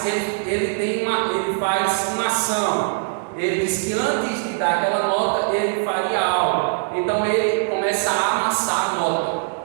ele faz uma ação. Ele diz que antes de dar aquela nota, ele faria algo. Então ele começa a amassar a nota.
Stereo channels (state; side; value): silent; left; digital silence